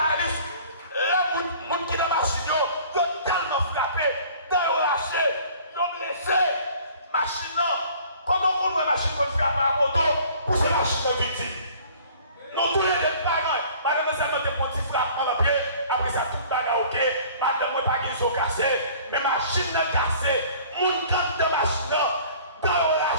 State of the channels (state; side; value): inverted; both; correlation -0.50